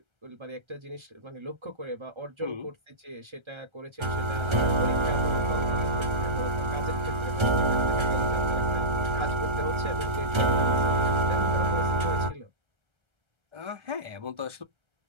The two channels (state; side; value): late; left; 1.3 ms